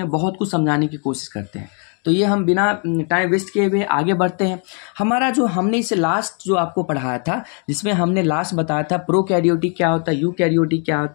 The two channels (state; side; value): quieter; right; 39.9 dB